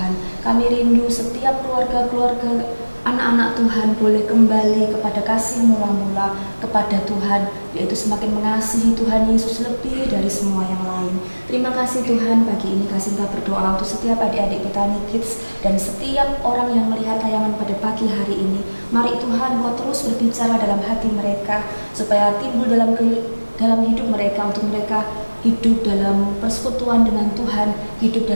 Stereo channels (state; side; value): inverted; both; correlation -1.00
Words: Kami rindu setiap keluarga-keluarga anak-anak Tuhan boleh kembali kepada kasih mula-mula kepada Tuhan, yaitu semakin mengasihi Tuhan Yesus lebih dari semua yang lain. Terima kasih Tuhan, pagi ini kasih Engkau berdoa untuk setiap adik-adik Bethany Kids dan setiap orang yang melihat tayangan pada pagi hari ini. Mari Tuhan, Kau terus berbicara dalam hati mereka supaya timbul dalam hidup mereka, untuk mereka hidup dalam persekutuan dengan Tuhan, hidup